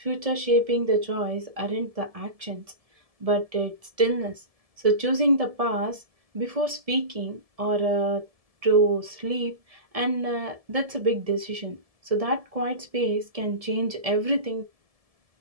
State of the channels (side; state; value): left; late; 1.7 ms